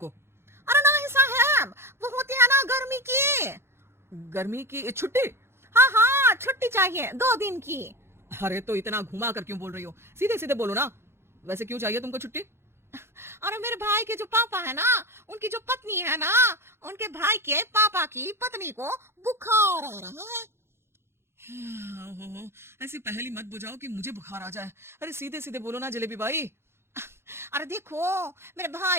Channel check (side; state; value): left; late; 0.12 ms